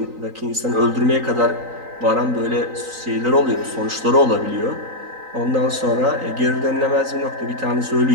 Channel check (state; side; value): late; left; 3.9 ms